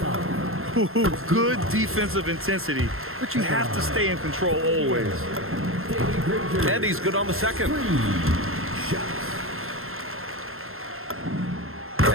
Ooh, good defensive intensity, but you have to stay in control always. And he's good on the second.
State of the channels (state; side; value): late; left; 0.61 ms